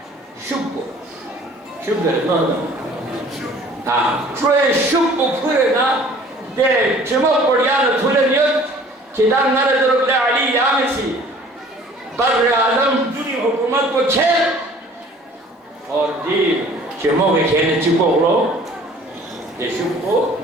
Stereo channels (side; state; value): both; normal; correlation 0.51